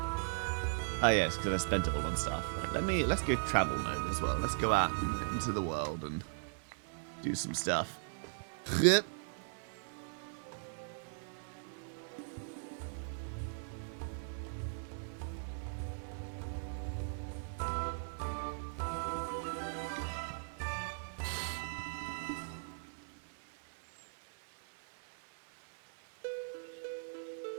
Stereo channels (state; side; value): silent; left; digital silence